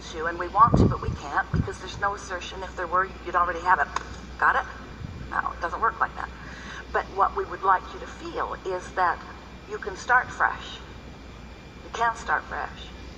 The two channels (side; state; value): both; identical; correlation 1.00